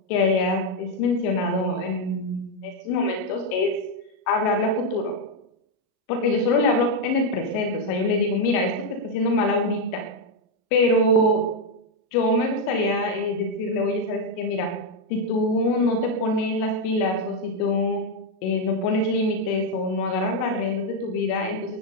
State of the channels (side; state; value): right; late; 38 ms